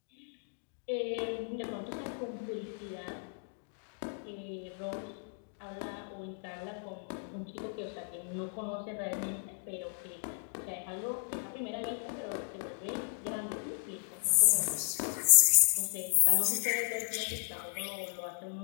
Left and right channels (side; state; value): right; silent; digital silence